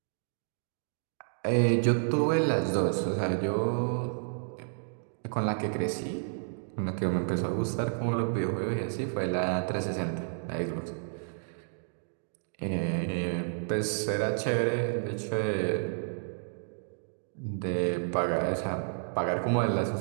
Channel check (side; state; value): left; silent; digital silence